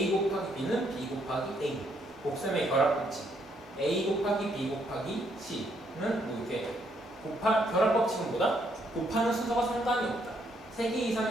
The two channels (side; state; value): both; normal; correlation 0.72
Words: 곱하기 b는 b 곱하기 a. 곱셈의 결합 법칙. a 곱하기 b 곱하기 c는 뭐 이렇게 결합 법칙은 뭐다? 곱하는 순서가 상관이 없다. 3개